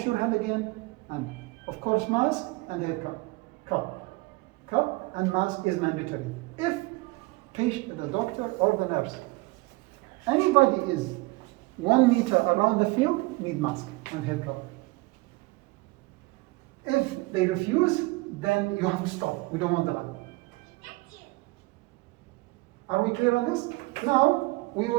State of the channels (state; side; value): quieter; left; 23.3 dB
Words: your hand again, and of course mask and hair cup. Cup and mask is mandatory. If the doctor or the nurse, anybody is 1 meter around the field, need mask and hair cover. If they refuse, then you have to stop. We don't want the line. Are we clear on this? Now, we